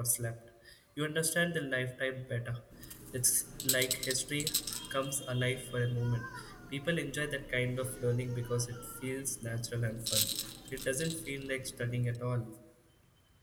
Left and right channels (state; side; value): identical; both; correlation 1.00